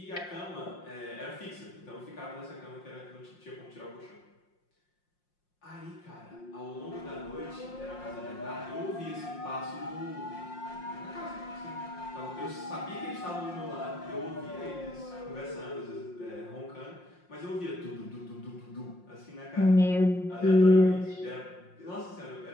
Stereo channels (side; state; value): right; late; 5.6 ms